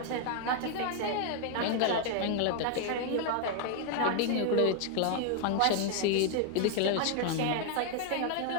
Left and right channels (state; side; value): different; both; correlation 0.00